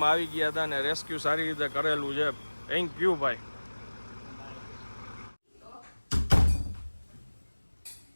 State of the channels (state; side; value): inverted; both; correlation -1.00